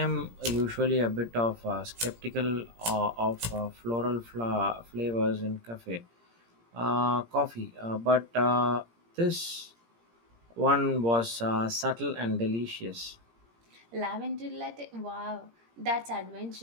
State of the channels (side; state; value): left; late; 17 ms